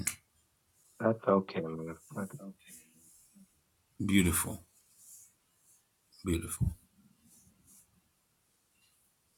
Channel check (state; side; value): identical; both; correlation 1.00